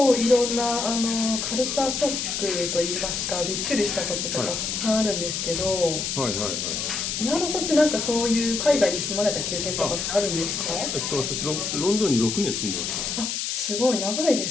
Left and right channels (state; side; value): noise; left; hiss, 2 dB below the sound